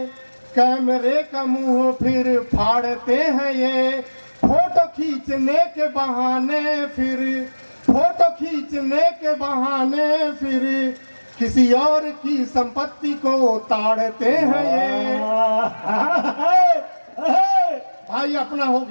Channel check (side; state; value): both; inverted; correlation -1.00